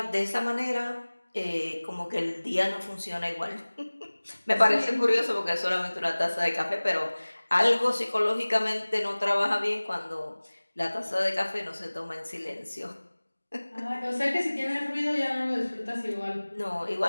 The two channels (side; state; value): both; inverted; correlation -1.00